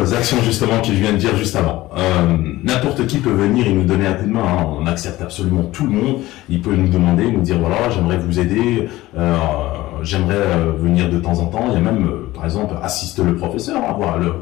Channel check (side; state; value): right; quieter; 17.3 dB